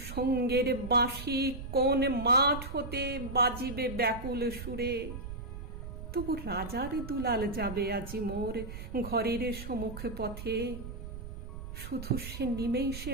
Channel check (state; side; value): noise; right; rumble, 9 dB below the sound